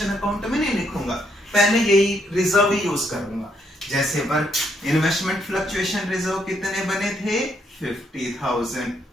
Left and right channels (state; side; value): normal; both; correlation 0.74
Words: अकाउंट में नहीं लिखूंगा, पहले यही रिजर्व ही यूज करूंगा। जैसे इन्वेस्टमेंट फ्लक्चुएशन रिजर्व कितने बने थे? 50,000।